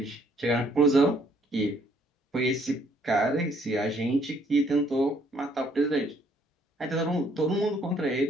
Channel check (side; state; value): both; normal; correlation 0.65